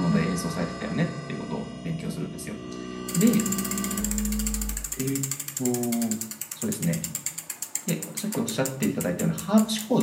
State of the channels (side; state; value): both; identical; correlation 1.00